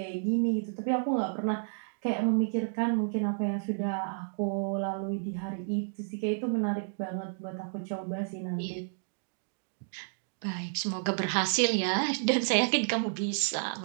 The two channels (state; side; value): silent; left; digital silence